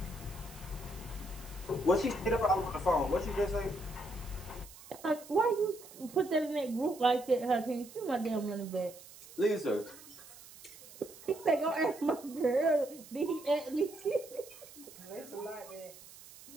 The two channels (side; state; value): right; noise; hiss, 18 dB below the sound